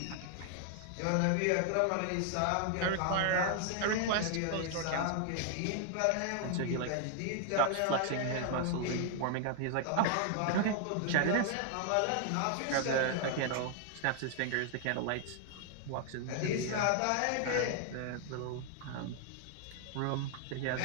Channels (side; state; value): both; different; correlation 0.00